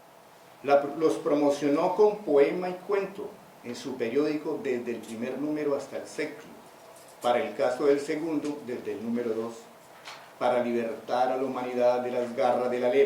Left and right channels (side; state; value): both; identical; correlation 1.00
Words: Los promocionó con poema y cuento en su periódico desde el primer número hasta el séptimo, para el caso del segundo desde el número 2, para libertar a la humanidad de las garras de la